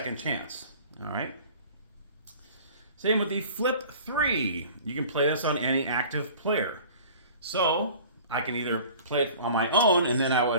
chance. All right. Same with the flip 3. You can play this on any active player. So I can either play it on my own, and then I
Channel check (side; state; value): both; inverted; correlation -0.45